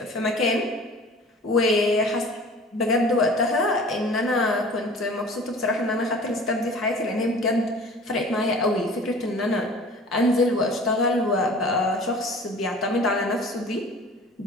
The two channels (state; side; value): normal; both; correlation 0.44